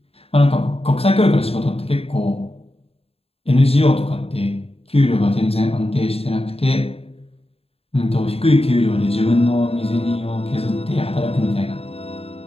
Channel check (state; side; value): late; right; 0.28 ms